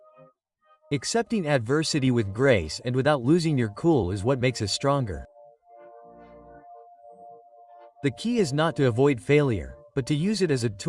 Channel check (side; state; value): both; identical; correlation 1.00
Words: Accepting adversity with grace and without losing your cool is what makes us stronger. The key is not to avoid failure, but to use it as a